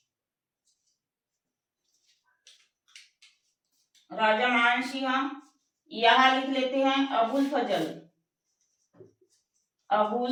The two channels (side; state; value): both; identical; correlation 1.00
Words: राजा मान सिंह। यहां लिख लेते हैं अबुल फजल।